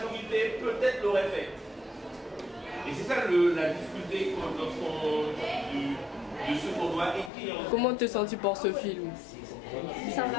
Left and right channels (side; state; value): right; drops out; at 7.3 s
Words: peut-être l'aurait fait. Et c'est ça la difficulté de ce qu'on doit écrire. Comment te sens-tu pour ce film? Ça